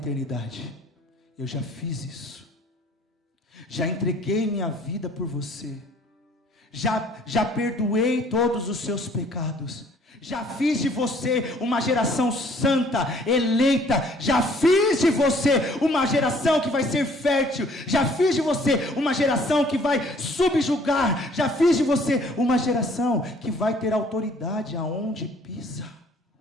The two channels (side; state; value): both; normal; correlation 0.58